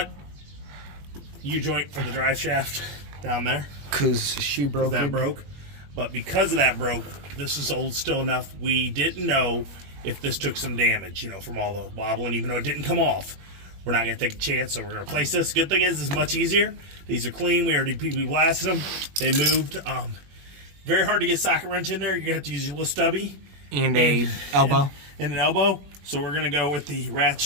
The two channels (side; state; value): left; late; 21 ms